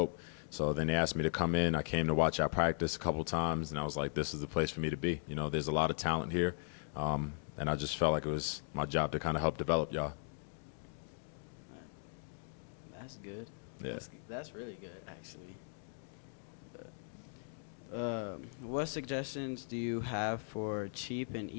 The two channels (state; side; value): silent; right; digital silence